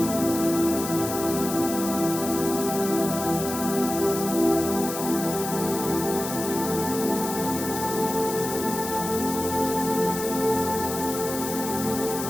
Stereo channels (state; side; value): noise; left; hiss, 7 dB below the sound